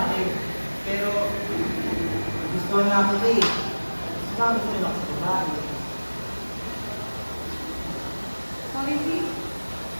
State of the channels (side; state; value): both; inverted; correlation -1.00